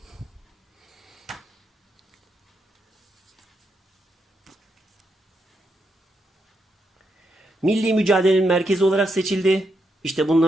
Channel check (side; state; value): both; normal; correlation 0.82